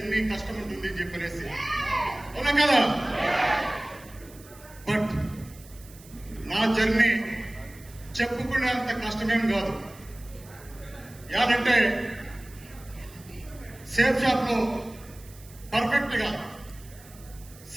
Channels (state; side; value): noise; right; hiss, 22 dB below the sound